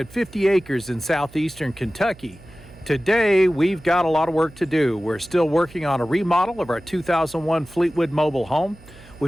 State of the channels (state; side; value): noise; right; hum, 23 dB below the sound